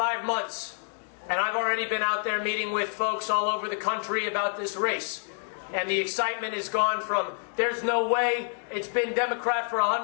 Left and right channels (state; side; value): silent; right; digital silence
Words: months, and I've already been out there meeting with folks all over the country about this race. And the excitement has gone from, there's no way, it's been Democrat for